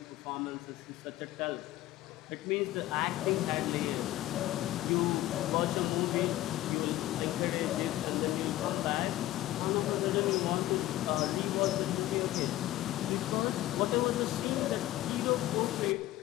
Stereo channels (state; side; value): quieter; right; 15.2 dB